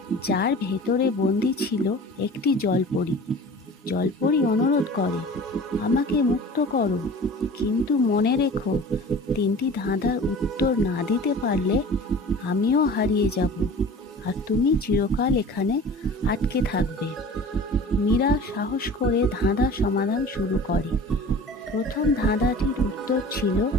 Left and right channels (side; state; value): both; normal; correlation 0.40